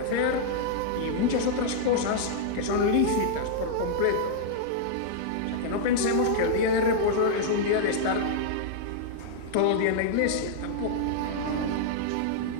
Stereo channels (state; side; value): different; both; correlation -0.01